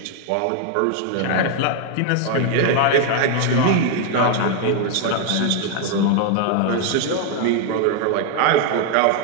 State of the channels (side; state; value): both; different; correlation 0.00